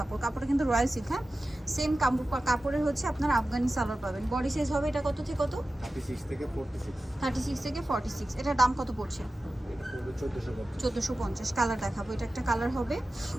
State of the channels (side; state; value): both; normal; correlation 0.94